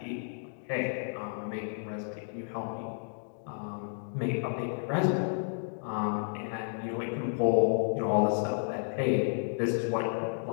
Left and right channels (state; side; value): silent; right; digital silence